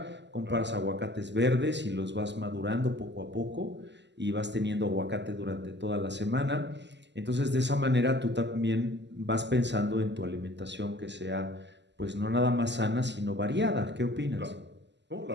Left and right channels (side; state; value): left; late; 0.51 ms